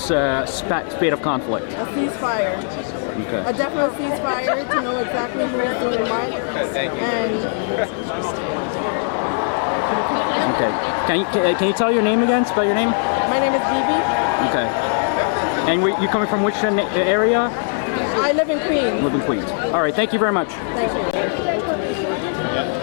spate of conflict? A ceasefire. A definite ceasefire to know exactly who is doing what, and Can you tell your name again? Spell your name. My name is Bibi. Okay. And you coming from which area? I live in Queens. Live in Queens. All right. Thank you very much. Thank you.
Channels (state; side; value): silent; right; digital silence